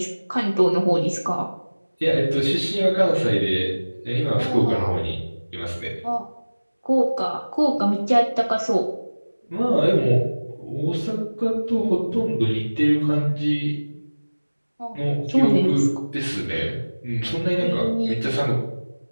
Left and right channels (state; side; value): inverted; both; correlation -1.00